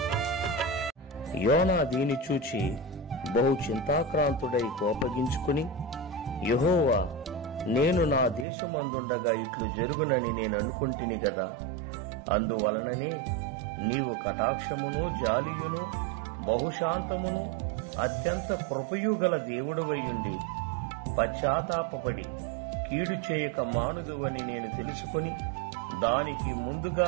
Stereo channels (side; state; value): left; drops out; at 8.5 s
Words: యోనా దీని చూచి బహు చింతాక్రాంతుడై కోపగించుకుని, యెహోవా, నేను నా దేశమందుండగా ఇట్లు జరుగునని నేను అనుకుంటిని గదా, అందువలననే నీవు కటాక్షమును జాలియును బహుశాంతమును అత్యంత కృపయు గల దేవుడవయ్యుండి పశ్చాత్తాపపడి కీడు చేయక మానుదువని నేను తెలుసుకొని దానికి